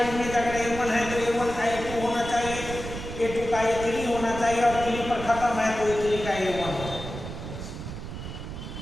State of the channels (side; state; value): right; noise; rumble, 9 dB below the sound